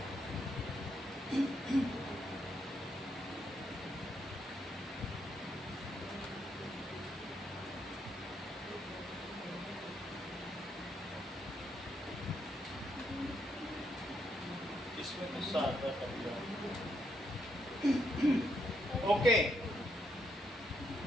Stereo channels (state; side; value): normal; both; correlation 0.77